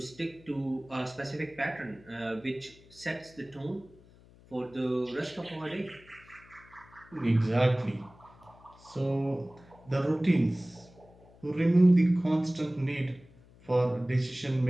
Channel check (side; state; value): left; noise; hum, 25 dB below the sound